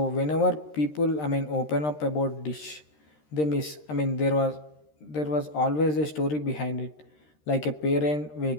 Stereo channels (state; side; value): late; right; 13 ms